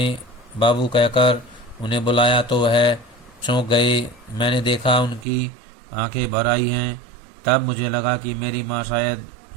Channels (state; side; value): drops out; left; at 5.2 s